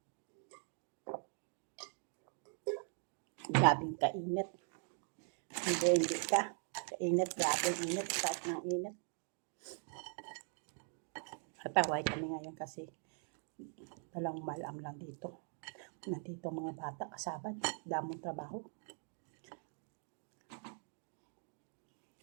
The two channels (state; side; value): silent; left; 50 dB below the other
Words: Grabing kainit. Hindi ka. Kainit, grabing init. Start ng init. Kataway kami ngayon kasi talang malam lang dito. Nandito mga bata kasabad. Damong trabaho.